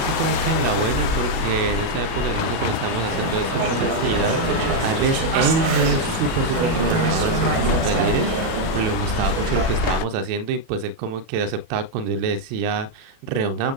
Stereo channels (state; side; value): late; left; 36 ms